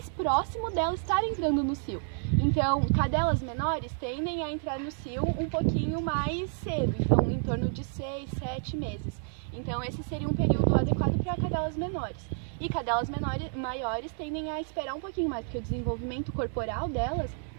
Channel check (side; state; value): left; silent; 58 dB below the other